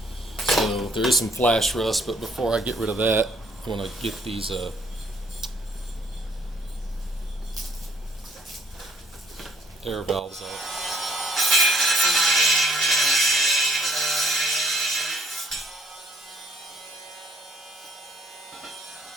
So there is some flash rust, but before I get rid of that, I want to get these air valves off.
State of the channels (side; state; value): both; normal; correlation 0.64